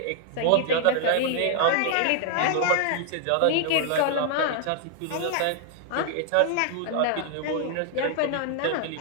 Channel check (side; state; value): both; different; correlation 0.00